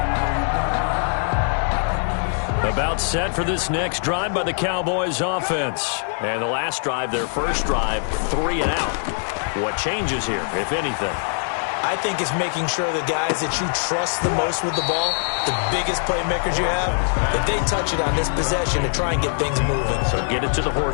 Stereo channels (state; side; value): silent; right; 64 dB below the other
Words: About set for this next drive by the Cowboys offense. And the last drive, their first drive, 3 and out. What changes here, if anything? I think it's making sure the guys that you trust the most with the ball, the biggest playmakers you have, that they touch it on this possession to try and get things moving. So get it to the